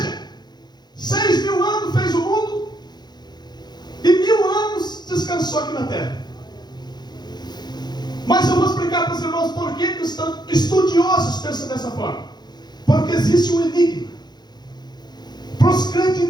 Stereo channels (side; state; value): right; late; 0.21 ms